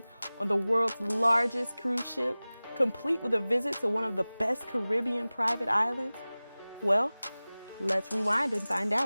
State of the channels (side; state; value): both; inverted; correlation -0.99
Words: on the world's largest cruise ship, complete with a visit to one of the best Caribbean private islands? Well, let's rewind and find